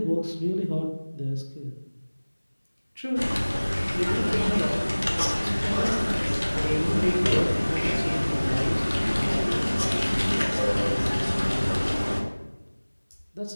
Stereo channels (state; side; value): inverted; both; correlation -1.00